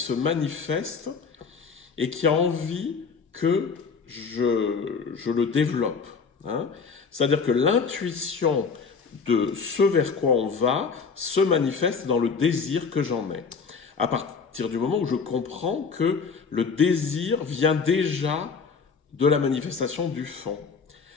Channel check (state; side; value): quieter; right; 5.4 dB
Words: manifeste et qui a envie que je le développe. Hein. C'est-à-dire que l'intuition de ce vers quoi on va se manifeste dans le désir que j'en ai. À partir du moment où je comprends que le désir vient déjà de la manifestation du fond.